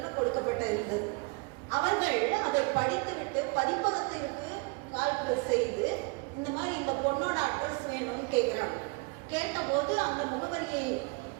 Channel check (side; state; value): left; quieter; 29.3 dB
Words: கொடுக்கப்பட்ட இருந்தது. அவர்கள் அதை படித்துவிட்டு பதிப்பகத்திற்கு கால் செய்து இந்த மாதிரி இந்த பொண்ணோட அட்ரஸ் வேணும்னு கேட்குறாங்க. கேட்டபோது அந்த முகவரியை